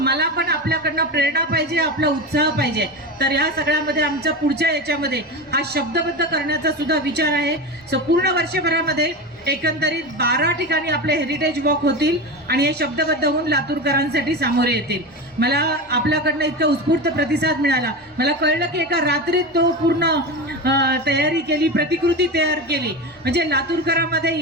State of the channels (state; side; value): normal; both; correlation 0.23